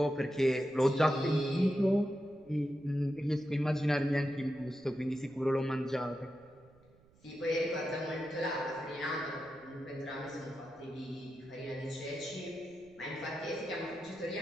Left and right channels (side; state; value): right; noise; rumble, 28 dB below the sound